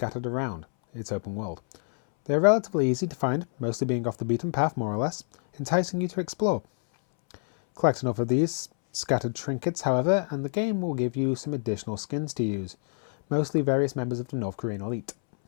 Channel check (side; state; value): right; silent; 60 dB below the other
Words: around its open world. They are relatively easy to find, mostly being off the beaten path more or less, enticing you to explore. Collect enough of these scattered trinkets, however, and the game will give you some additional skins to use, mostly various members of the North Korean elite.